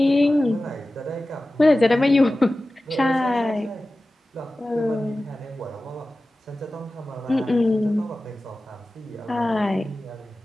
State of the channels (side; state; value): both; normal; correlation 0.96